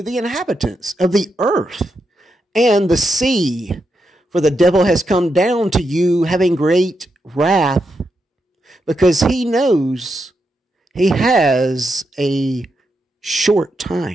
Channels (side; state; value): both; normal; correlation 0.84